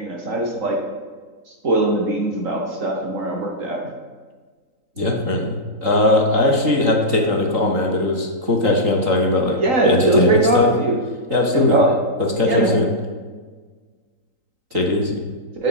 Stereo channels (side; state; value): left; late; 3.9 ms